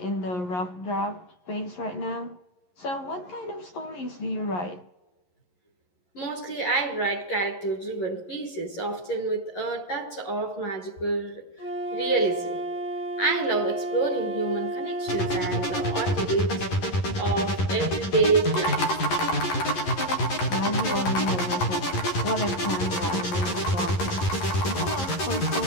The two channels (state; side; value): late; right; 11 ms